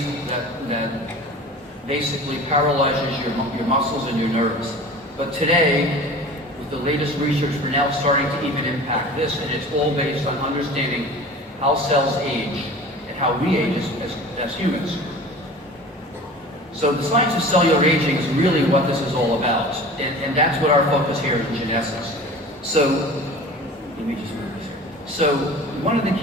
that basically paralyzes your muscles and your nerves. But today, with the latest research, we're now starting to even impact this, and it's all based on understanding how cells age and how we age as humans. So the science of cellular aging is really what this is all about, and that's what our focus here in Jeunesse is. So, let me just move this here. So one of the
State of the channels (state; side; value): normal; both; correlation 0.40